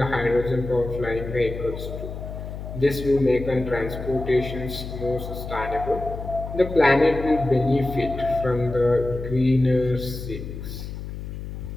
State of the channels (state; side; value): noise; left; hum, 8 dB below the sound